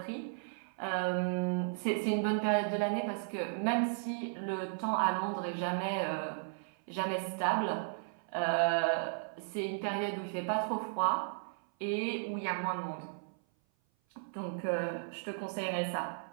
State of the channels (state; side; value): silent; left; 54 dB below the other